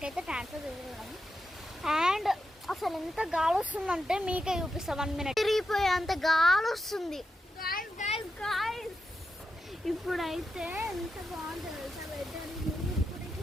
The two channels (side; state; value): both; normal; correlation 0.87